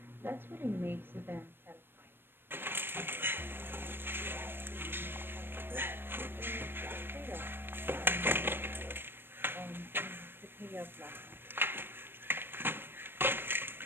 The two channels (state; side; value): late; left; 0.10 ms